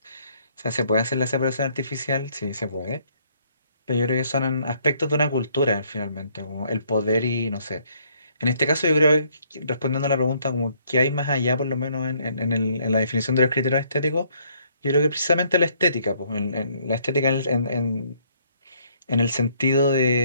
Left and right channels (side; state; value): both; inverted; correlation -0.66